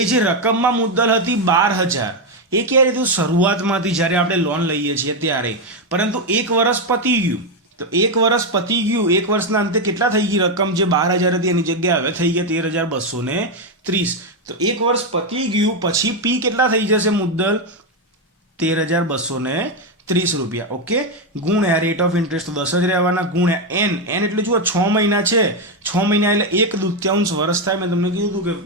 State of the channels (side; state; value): both; normal; correlation 0.06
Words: જે રકમમાં મુદ્દલ હતી 12,000, એ ક્યારે હતું, શરૂઆતમાંથી જ્યારે આપણે લોન લઈએ છીએ ત્યારે. પરંતુ 1 વર્ષ પતી ગયું, તો 1 વર્ષ પતી ગયું, 1 વર્ષના અંતે કેટલા થઈ ગઈ રકમ, જે 12,000 હતી એની જગ્યાએ હવે થઈ ગયા 13,230. તો 1 વર્ષ પતી ગયું પછી P કેટલા થઈ જશે મુદ્દલ, 13,230 રૂપિયા. ઓકે, ગુણ્યા રેટ ઓફ ઇન્ટરેસ્ટ તો 10 જ રહેવાના, ગુણ્યા n એટલે જુઓ 6 મહિના છે, 6 મહિના એટલે 1/2 વર્ષ થાય. મેં તમને કીધું હતું કે